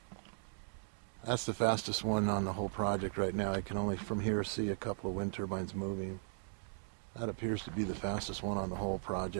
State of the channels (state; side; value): silent; left; digital silence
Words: that's the fastest one on the whole project right now. I can only from here see a couple of wind turbines moving. That appears to be the fastest one on the whole